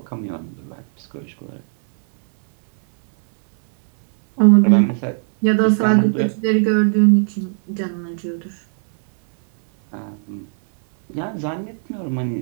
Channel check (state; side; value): silent; left; 65 dB below the other